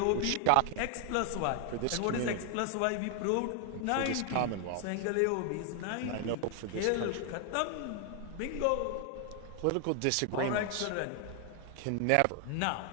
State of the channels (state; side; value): different; both; correlation 0.00